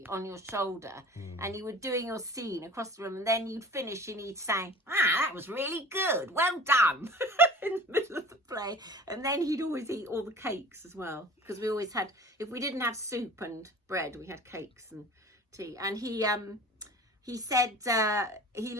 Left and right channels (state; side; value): normal; both; correlation 0.42